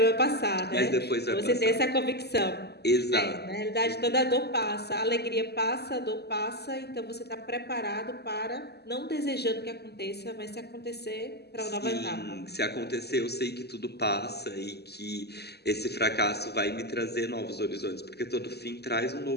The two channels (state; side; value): late; right; 0.47 ms